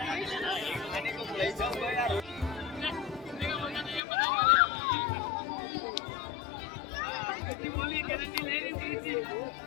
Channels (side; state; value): right; drops out; at 4.0 s